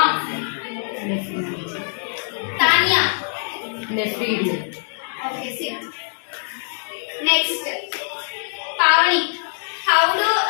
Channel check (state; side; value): silent; right; 64 dB below the other